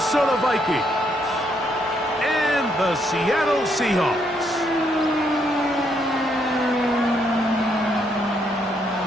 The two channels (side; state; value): both; normal; correlation 0.74